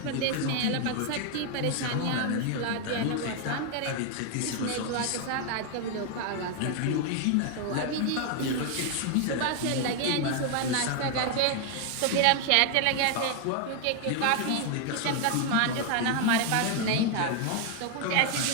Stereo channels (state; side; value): different; both; correlation 0.00